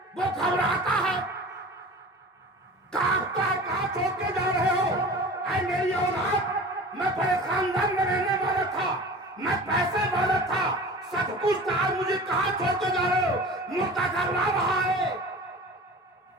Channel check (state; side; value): normal; both; correlation 0.38